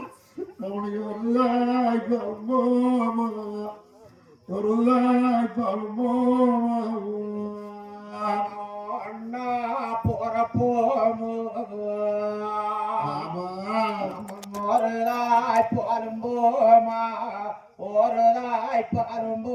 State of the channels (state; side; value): identical; both; correlation 1.00